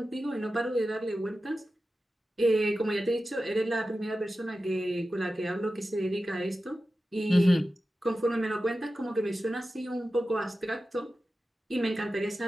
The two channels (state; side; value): normal; both; correlation 0.93